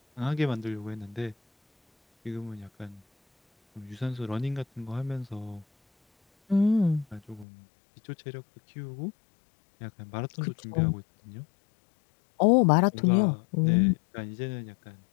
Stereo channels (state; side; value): drops out; right; at 7.5 s